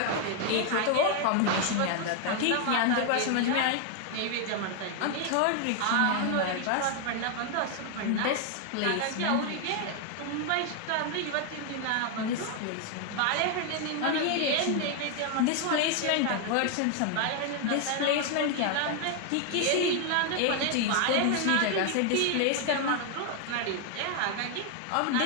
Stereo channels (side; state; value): both; different; correlation 0.01